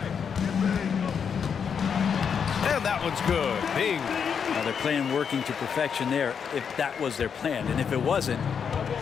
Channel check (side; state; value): right; quieter; 6.9 dB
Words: And that one's good. Bing. Now they're playing working to perfection there, if that was their plan. And if it wasn't,